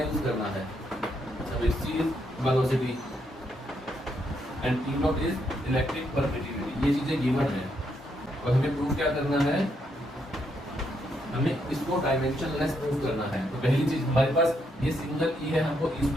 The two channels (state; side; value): normal; both; correlation 0.77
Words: करना है। सब c is velocity and T not is electric permittivity, ये चीजें गिवन है और हमें प्रूव क्या करना है, हमें इसको डायमेंशनलेस प्रूव करना है। तो पहली चीज हमारे पास ये सिंगल ई है, हमको ई